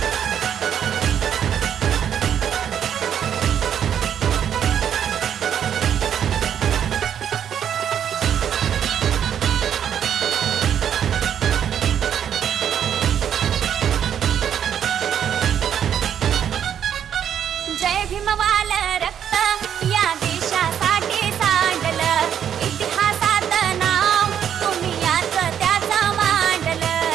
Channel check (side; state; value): left; quieter; 9.1 dB